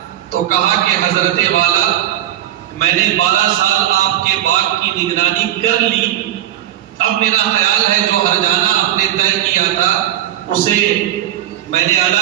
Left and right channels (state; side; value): quieter; left; 12.6 dB